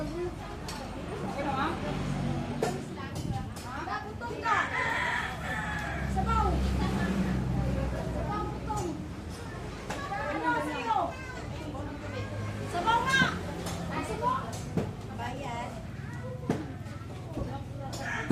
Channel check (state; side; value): identical; both; correlation 1.00